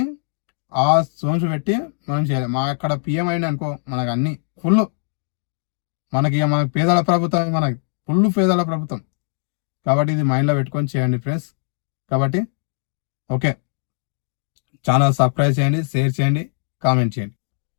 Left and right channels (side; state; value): right; silent; digital silence